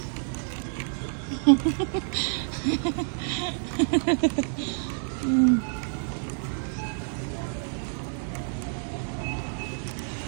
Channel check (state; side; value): silent; left; 59 dB below the other